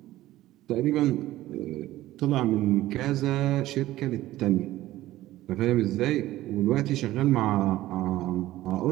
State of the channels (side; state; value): left; quieter; 15.6 dB